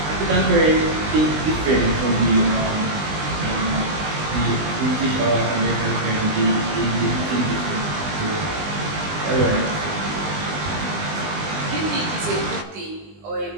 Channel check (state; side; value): late; left; 20 ms